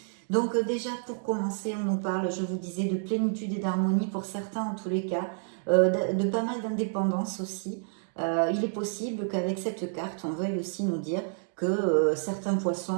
Donc déjà pour commencer, on nous parle, je vous disais, de plénitude et d'harmonie pour certains en tous les cas, de pas mal d'indépendance aussi. Il est possible qu'avec cette carte, on veuille aussi nous dire que certains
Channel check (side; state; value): left; silent; digital silence